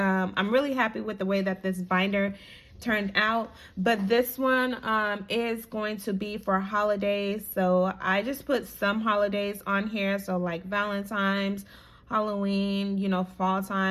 really happy with the way that this binder turned out, but this one is going to be for holidays. So I just put some holidays on here, so like Valentine's, Halloween, fall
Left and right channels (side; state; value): both; identical; correlation 1.00